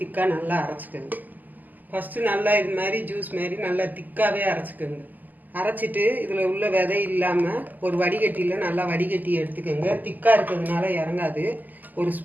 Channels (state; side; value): late; left; 0.084 ms